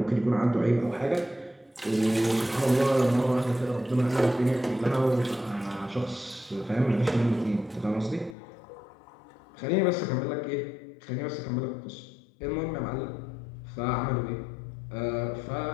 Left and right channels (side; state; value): right; drops out; at 8.3 s